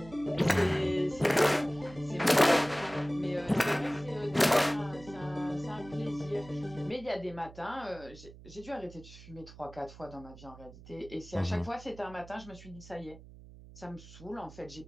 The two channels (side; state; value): right; noise; hum, 18 dB below the sound